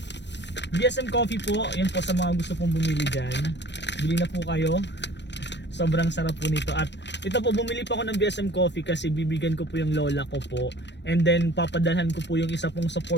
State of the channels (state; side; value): late; right; 0.51 ms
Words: VSM Coffee po, yan po sa mga gusto pong bumili dyan, bili na po kayo, sobrang sarap po nito. At ito po, bumili po ako ng VSM Coffee kasi bibigyan ko po yung lola ko po. And then papadalhan ko po yung isa pong